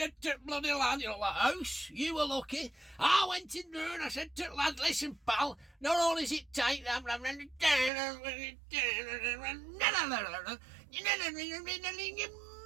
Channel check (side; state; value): left; drops out; at 7.9 s